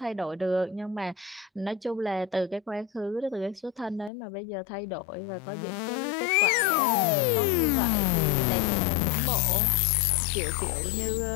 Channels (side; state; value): right; drops out; at 4.1 s